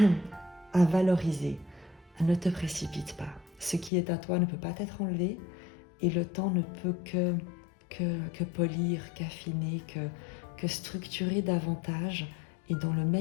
valoriser. Ne te précipite pas. Ce qui est à toi ne peut pas être enlevé et le temps ne peut que polir, qu'affiner, que structurer davantage et dans le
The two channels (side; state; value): right; drops out; at 3.9 s